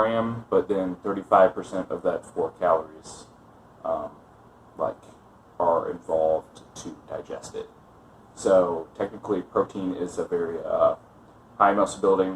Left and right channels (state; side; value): identical; both; correlation 1.00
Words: but then 35% of that 4 calories are involved to digest it. So technically, protein is a very high muscle